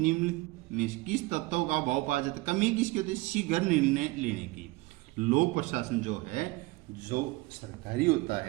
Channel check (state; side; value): quieter; left; 21.7 dB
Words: में किस तत्व का अभाव पाया जाता है? कमी किसकी होती है? शीघ्र निर्णय लेने की। लोक प्रशासन जो है, जो सरकारी होता